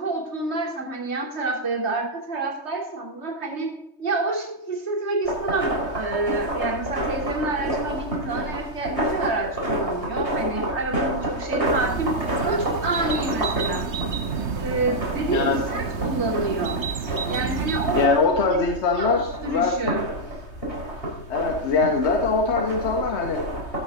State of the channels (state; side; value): late; right; 3.2 ms